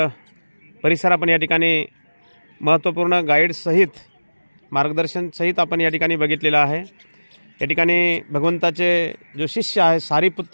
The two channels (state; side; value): inverted; both; correlation -1.00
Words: परिसर आपण या ठिकाणी महत्त्वपूर्ण गाईडसहित मार्गदर्शनसहित आपण या ठिकाणी बघितलेला आहे. या ठिकाणी भगवंताचे जो शिष्य आहे